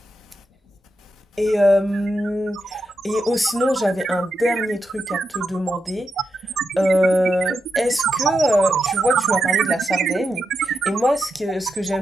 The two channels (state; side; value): normal; both; correlation 0.86